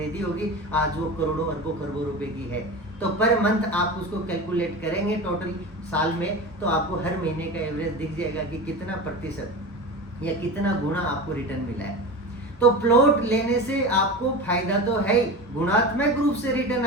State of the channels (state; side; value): normal; both; correlation 0.28